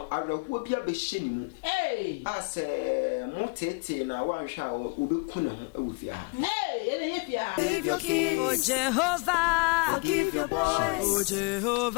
I will be a machine. Hey, I say, Montete, and I want shower, Udukuna with ya. Hey, Save your kids, oh Jehovah, forgive your boys, oh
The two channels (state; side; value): quieter; right; 30.3 dB